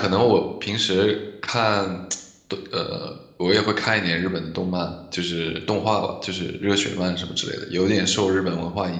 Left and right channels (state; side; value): identical; both; correlation 1.00